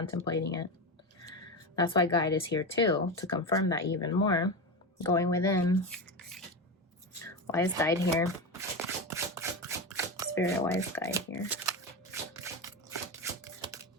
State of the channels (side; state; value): both; normal; correlation 0.18